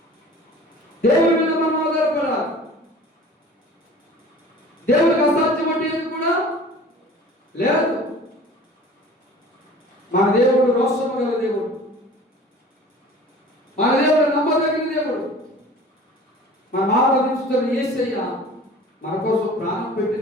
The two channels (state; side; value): normal; both; correlation 0.44